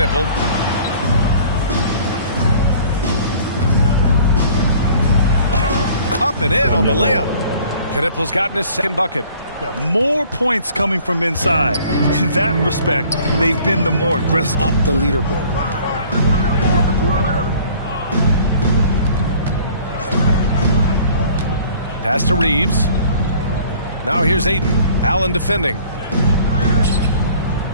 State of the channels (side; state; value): both; inverted; correlation -0.52